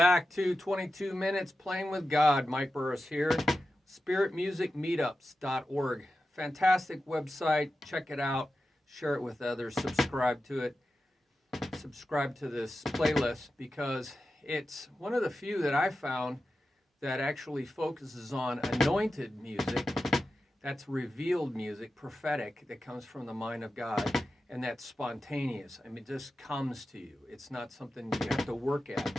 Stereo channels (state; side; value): normal; both; correlation 0.92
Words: to 22 Minutes Playing with God. Mike Burris here. Spirit Music Meetups.org. Fantastic website. Check it out. Share it with others. Subscribe to it. Subscribe to this playlist because it's one of the few that I found that actually focuses on anointed music. That's revealed music, prophetic, that comes from the mind of God. And that's spontaneous. I mean, it just comes to you. It's not something you have to work at.